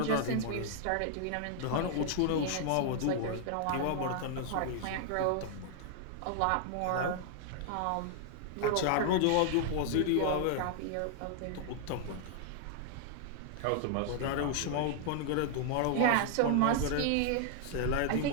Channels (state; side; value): different; both; correlation -0.01